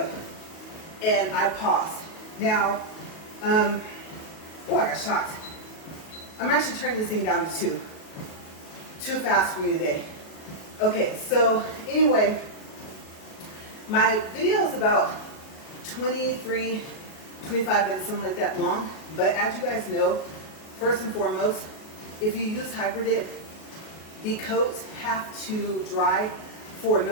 And I paused. Now, oh, I got shocked. I'm actually turning this thing down to 2. Too fast for me today. Okay, so anyway, my video is about 23, 25 minutes, something like that long. But as you guys know, first and foremost, if you use Hyperdip, the coats have to dry for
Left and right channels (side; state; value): right; late; 37 ms